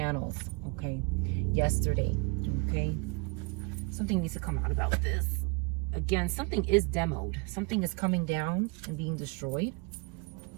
Okay, yesterday. Okay, something needs to come out about this. Again, something is demoed. Something is coming down and being destroyed.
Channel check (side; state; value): left; quieter; 29.6 dB